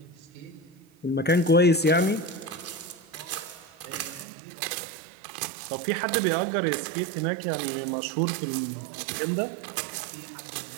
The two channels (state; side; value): drops out; left; at 4.2 s